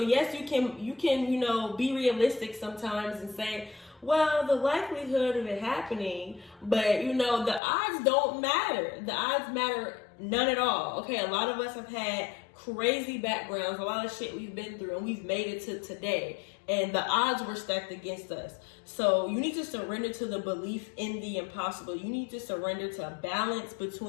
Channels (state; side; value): drops out; right; at 7.6 s